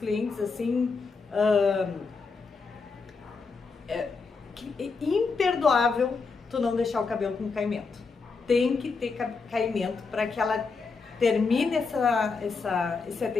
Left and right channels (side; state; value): right; quieter; 4.6 dB